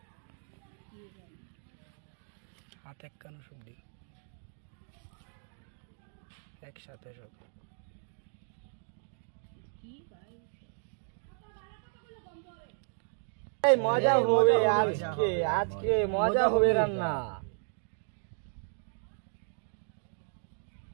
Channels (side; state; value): left; silent; digital silence